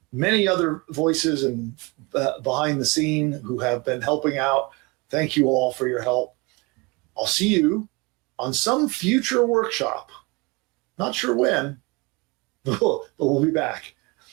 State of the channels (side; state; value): left; quieter; 26.8 dB